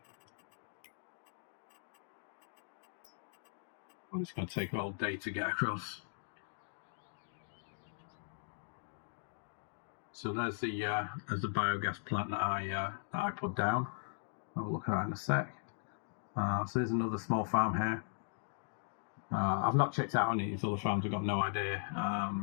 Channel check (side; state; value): right; silent; digital silence